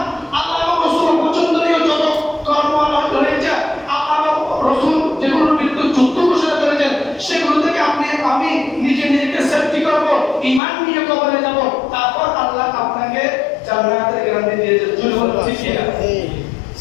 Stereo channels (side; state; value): right; drops out; at 10.6 s